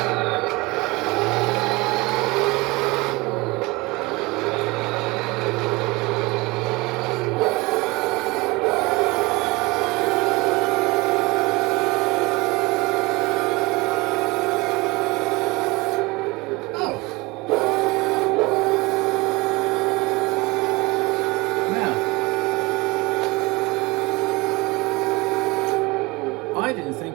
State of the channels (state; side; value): quieter; left; 23.5 dB